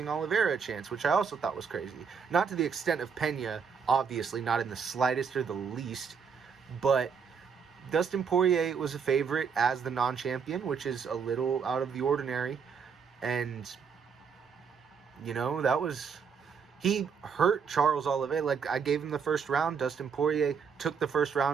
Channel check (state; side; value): quieter; left; 6.3 dB